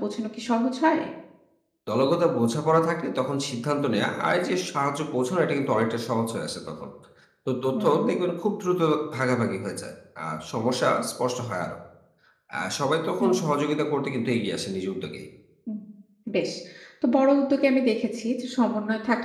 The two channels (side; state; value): both; identical; correlation 1.00